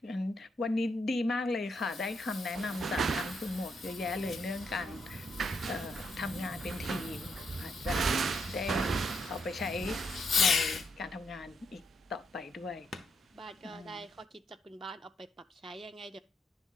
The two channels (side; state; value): both; normal; correlation 0.78